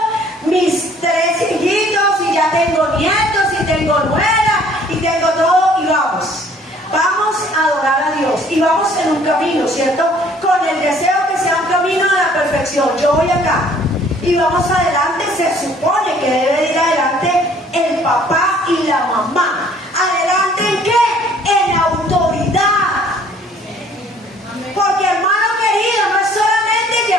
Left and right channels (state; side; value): normal; both; correlation 0.57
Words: mis 3 hijitos, y ya tengo nietos y tengo nuera y tengo todo, y vamos a adorar a Dios, y vamos en un camino, ¿cierto? Con el deseo que sea un camino de la perfección. Yo voy acá y vamos adelante. Se supone que debe ir adelante el papá y la mamá. ¿Adelante en qué? En autoridad. Porque, hermano querido, no es solamente